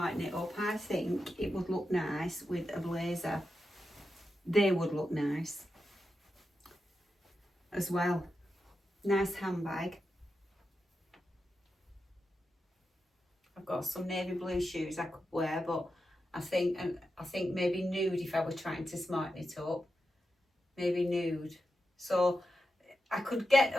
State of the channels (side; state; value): both; normal; correlation 0.89